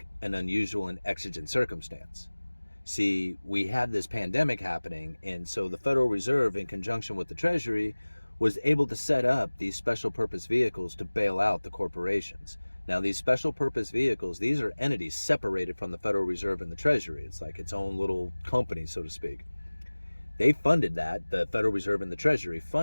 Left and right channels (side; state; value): both; inverted; correlation -1.00